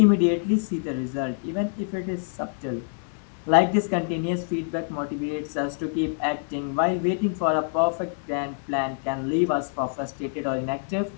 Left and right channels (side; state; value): right; silent; digital silence